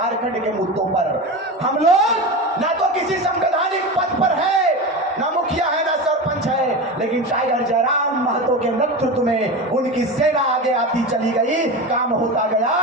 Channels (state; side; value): normal; both; correlation 0.24